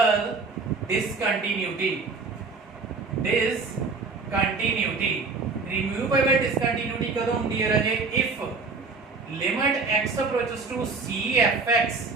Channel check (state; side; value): quieter; left; 4.2 dB